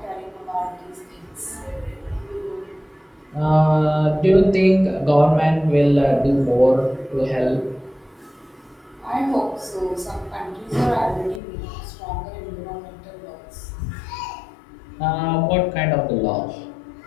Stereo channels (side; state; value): right; drops out; at 11.4 s